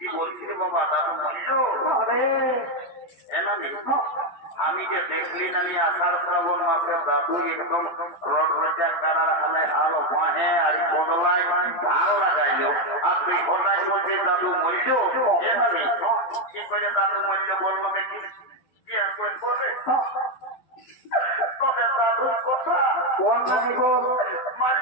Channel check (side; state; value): right; late; 11 ms